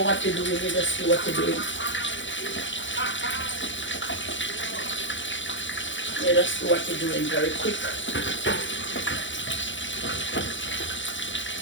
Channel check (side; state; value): right; late; 0.55 ms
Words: what you're doing, you just do what you're doing. You just do what you're doing very quick.